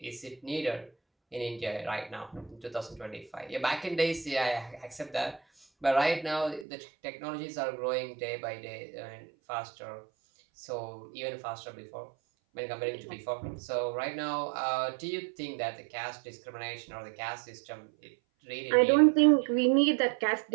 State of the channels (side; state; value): left; drops out; at 6.7 s